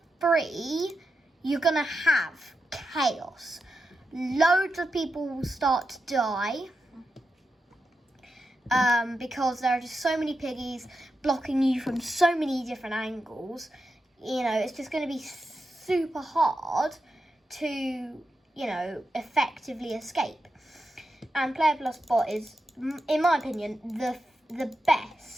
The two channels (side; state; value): both; normal; correlation 0.88